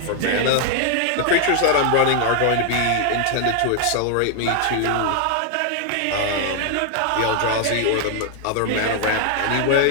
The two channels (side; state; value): both; different; correlation 0.00